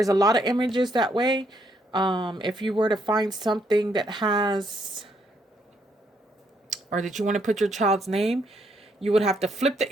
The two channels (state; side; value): normal; both; correlation 0.73